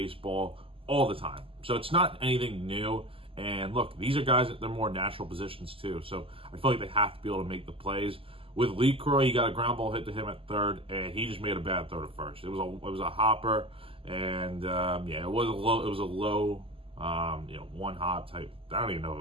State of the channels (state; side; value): late; left; 0.26 ms